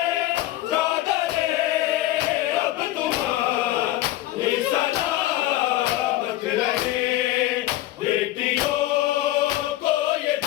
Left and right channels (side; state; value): right; quieter; 15.6 dB